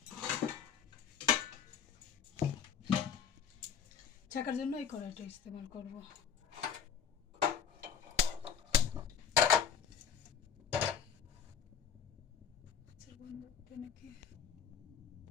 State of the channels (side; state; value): right; quieter; 7.5 dB